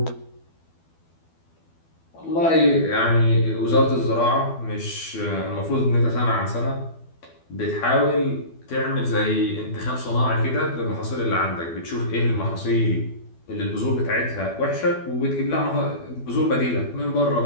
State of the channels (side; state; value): right; late; 12 ms